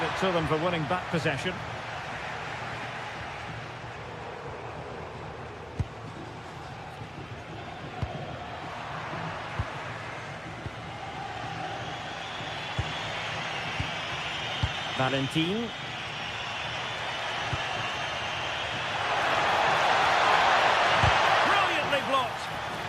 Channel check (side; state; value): right; noise; hum, 29 dB below the sound